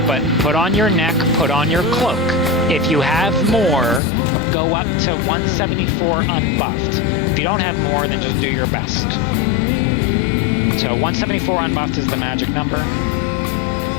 but put on your neck, put on your cloak. If you have more, go up to 174 unbuffed. If you don't have more, then just do your best. So 174 unbuffed is the magic number.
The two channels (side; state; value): right; drops out; at 4.0 s